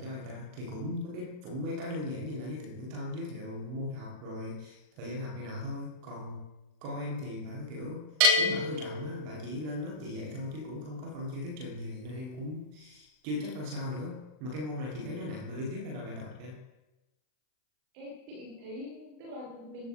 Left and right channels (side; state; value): left; late; 39 ms